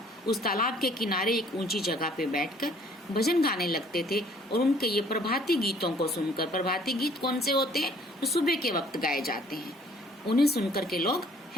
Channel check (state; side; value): normal; both; correlation 0.57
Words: उस तालाब के किनारे एक ऊंची जगह पे बैठकर भजन गाने लगते थे। और उनके ये प्रभाती गीतों को सुनकर, प्रभाती गीत कौन से होते हैं, तो सुबह के वक्त गाए जाते हैं, उन्हें सुनकर के लोग